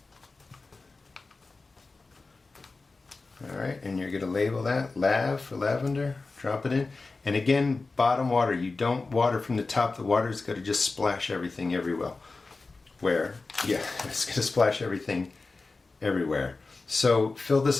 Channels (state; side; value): quieter; right; 3.8 dB